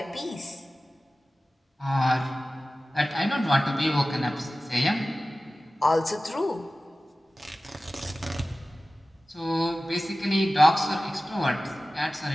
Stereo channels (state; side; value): normal; both; correlation 0.96